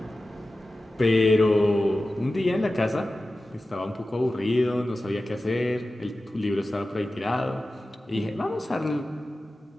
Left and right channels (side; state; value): both; normal; correlation 0.95